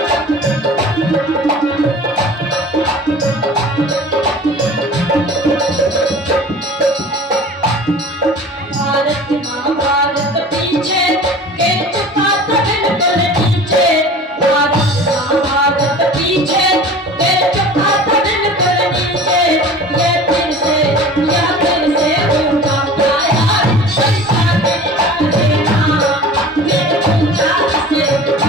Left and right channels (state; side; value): normal; both; correlation 0.41